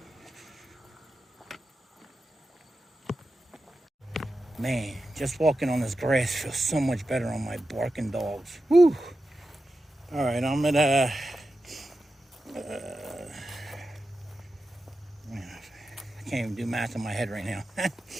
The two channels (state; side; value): normal; both; correlation 0.91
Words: Man, just walking on this grass feels so much better on my barking dogs. Whew. All right, I'm at Man, I can't even do math in my head right now.